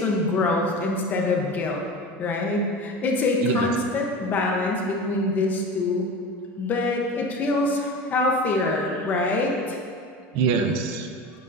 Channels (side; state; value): both; normal; correlation 0.31